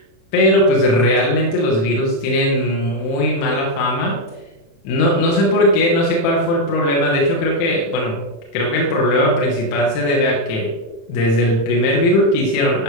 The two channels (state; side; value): late; right; 35 ms